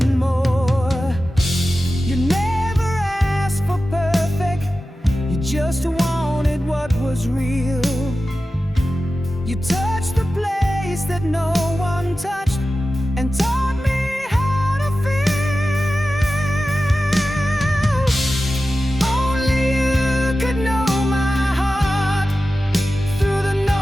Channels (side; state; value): both; normal; correlation 0.94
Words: more. You never asked for perfect, you just wanted what was real. You touched the place that no one touched and taught me how to feel. Only you could know my heart, through the